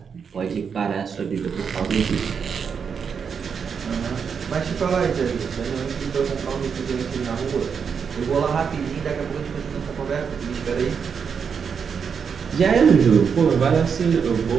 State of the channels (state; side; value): quieter; left; 6.5 dB